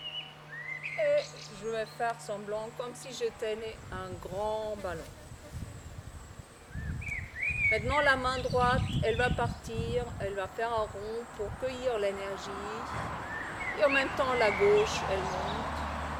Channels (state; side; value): identical; both; correlation 1.00